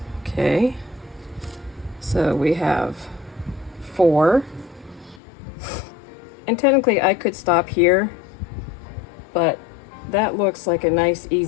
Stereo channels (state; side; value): drops out; right; at 5.2 s